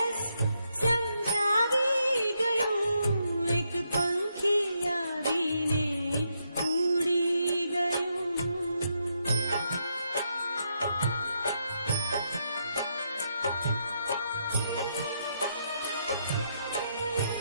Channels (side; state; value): both; inverted; correlation -0.79